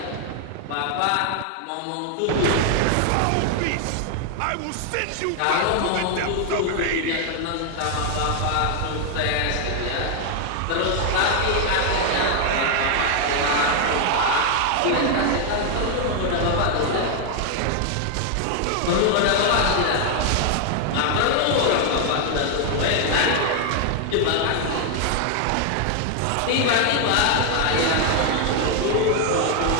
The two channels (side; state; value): both; different; correlation 0.00